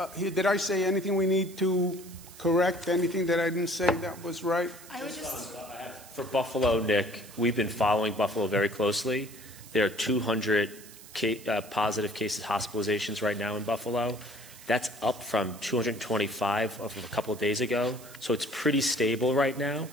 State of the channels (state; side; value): noise; right; hiss, 18 dB below the sound